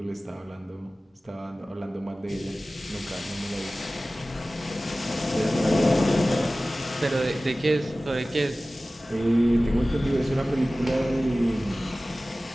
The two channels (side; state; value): both; normal; correlation 0.97